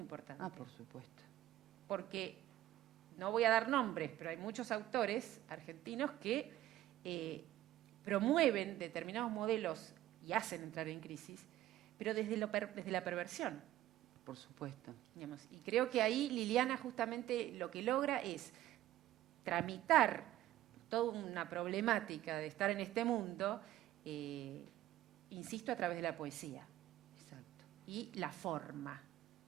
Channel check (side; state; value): left; quieter; 14.1 dB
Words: Ah, por supuesto. Porque, no voy a dar nombres, pero hay muchos autores argentinos que promueven determinados modelos y hacen entrar en crisis, pero desde la perversión. Por supuesto. Digamos. Y creo que ahí Liliana justamente lo que logra es tramitar toda una problemática de estar en este mundo, insisto, a través de la poesía. Exacto. Y la forma,